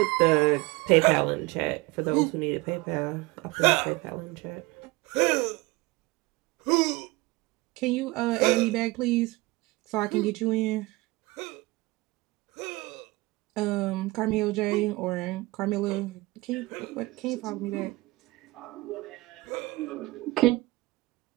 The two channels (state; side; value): quieter; left; 22.2 dB